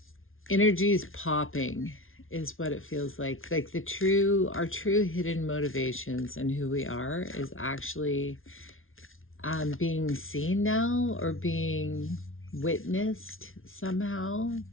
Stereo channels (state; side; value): late; right; 0.60 ms